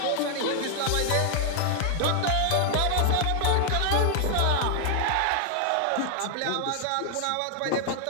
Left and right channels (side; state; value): both; different; correlation 0.00